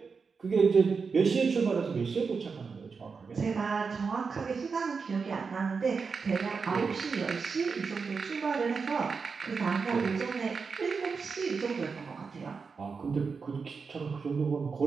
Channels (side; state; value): left; quieter; 5.1 dB